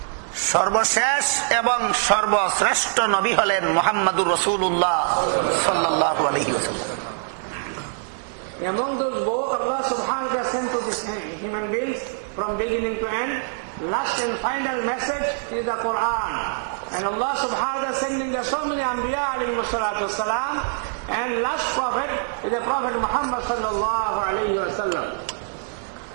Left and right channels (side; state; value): left; silent; 59 dB below the other